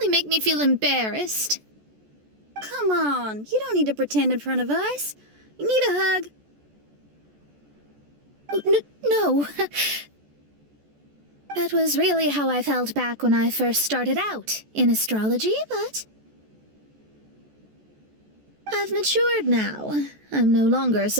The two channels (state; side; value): late; left; 14 ms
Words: make me feel embarrassed. Come on, you don't need to pretend in front of us. You need a hug. No. That was really how I felt back when I first started out in astrology, but I've matured now. I'm no longer